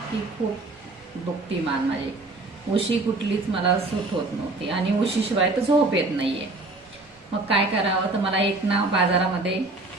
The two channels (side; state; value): left; quieter; 3.2 dB